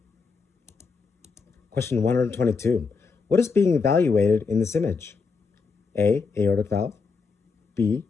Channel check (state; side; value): quieter; right; 4.9 dB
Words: Question 122. What is being evaluated in this image? A. Aortic valve, B.